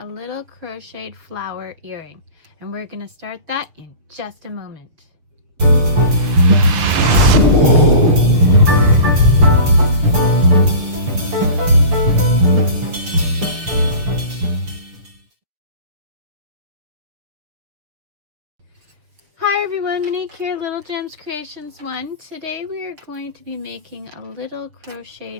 little crocheted flower earring, and we're going to start that in just a moment. Hi everyone, Monique here, Little Gems Creations 1. Today we are going to be making a little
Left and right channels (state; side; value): late; left; 6.5 ms